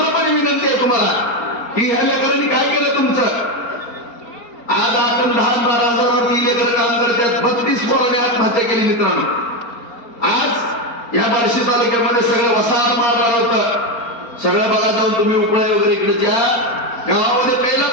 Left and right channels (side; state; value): right; late; 4.3 ms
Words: विनंती आहे तुम्हाला की ह्या लेकरांनी काय केलं तुमचं. आज 8 आणि 10 12 हजारावरती लेकर काम करतात. 32 पोरांनी आत्महत्या केली मित्रांनो. आज या बार्शी तालुक्यामध्ये सगळं वसाहत मारणार होतं. सगळं बघा जाऊन तुम्ही उपळे वगैरे इकडे, ज्या गावामध्ये प्यायला